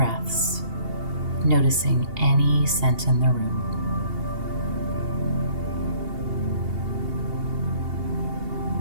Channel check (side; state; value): left; late; 2.8 ms